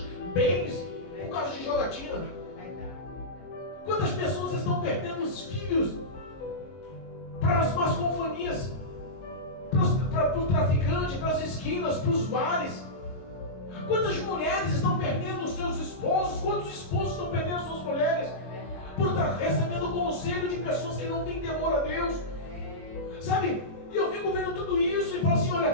bens por causa de jogatina? Quantas pessoas estão perdendo os filhos para as más companhias, para o traficante, para as esquinas, para os bares? Quantas mulheres estão perdendo os seus esposos? Quantos esposos estão perdendo as suas mulheres por estar recebendo conselho de pessoas que não têm temor a Deus? Sabe? E eu fico vendo tudo isso e falo assim,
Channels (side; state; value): right; late; 22 ms